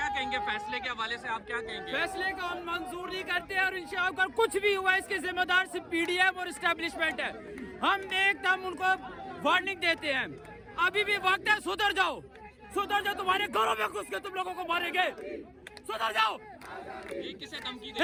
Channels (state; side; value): identical; both; correlation 1.00